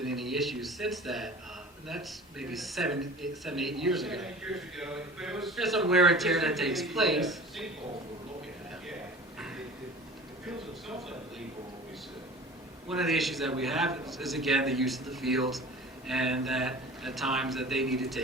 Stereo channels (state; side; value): normal; both; correlation 0.40